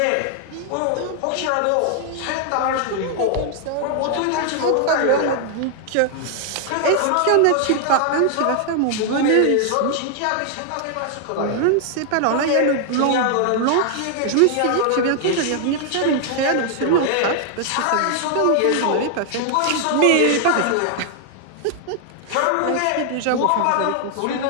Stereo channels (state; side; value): different; both; correlation 0.00